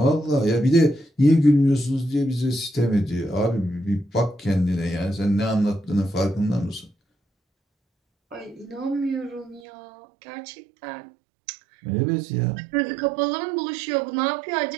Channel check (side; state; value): left; drops out; at 9.6 s